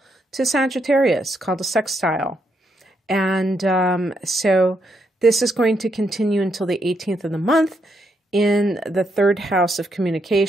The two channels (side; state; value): both; normal; correlation 0.78